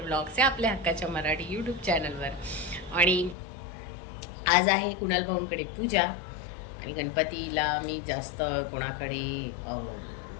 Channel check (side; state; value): right; drops out; at 3.4 s